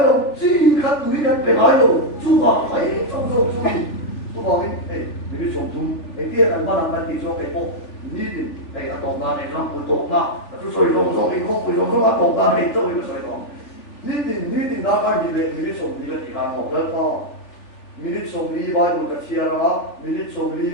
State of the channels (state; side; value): late; right; 3.4 ms